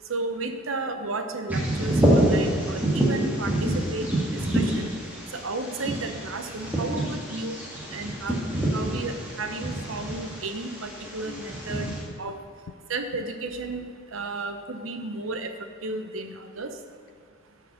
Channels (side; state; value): both; normal; correlation 0.57